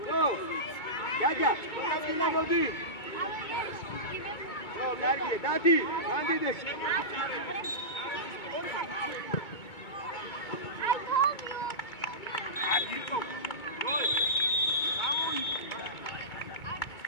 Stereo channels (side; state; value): right; late; 2.2 ms